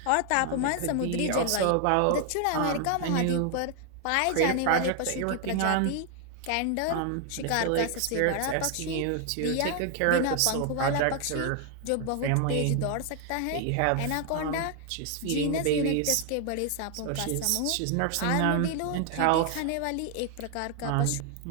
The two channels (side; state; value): both; different; correlation 0.00